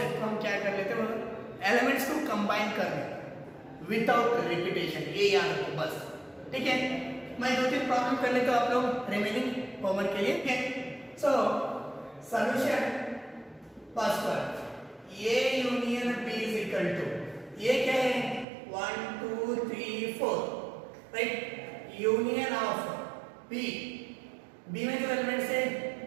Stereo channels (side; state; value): left; drops out; at 18.4 s